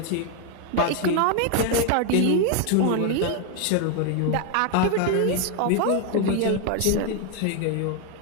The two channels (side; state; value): both; different; correlation 0.01